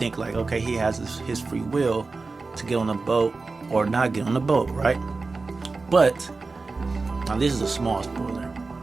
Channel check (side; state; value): left; quieter; 3.9 dB